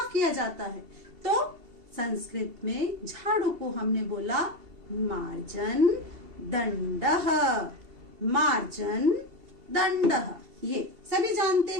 किया जाता है, तो संस्कृत में झाड़ू को हमने बोला मार्जन दंडः। मार्जन दंडः। ये सभी जानते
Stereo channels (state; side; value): late; left; 2.7 ms